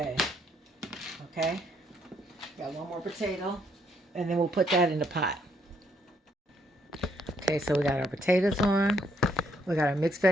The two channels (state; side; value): normal; both; correlation 0.71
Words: Okay? Got one more potato, and then we'll put that in the pot. Okay, so we got our potatoes on. We got our mixed